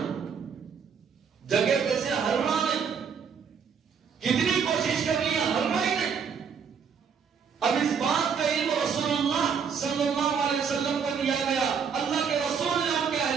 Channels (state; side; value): quieter; left; 6.6 dB